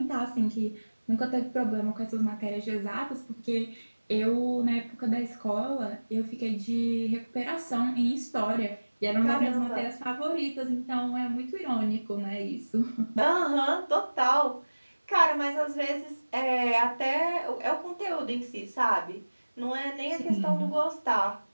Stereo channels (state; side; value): inverted; both; correlation -1.00